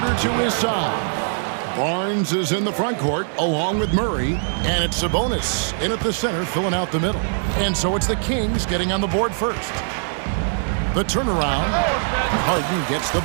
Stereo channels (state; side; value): silent; left; digital silence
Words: to his side. Barnes is in the front court along with Murray, and it's Sabonis in at the center filling out the middle. And so it's the Kings getting on the board first. The turnaround, Harden gets the